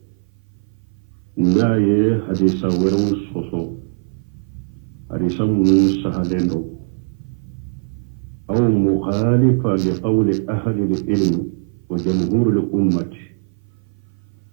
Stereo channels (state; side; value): silent; left; 58 dB below the other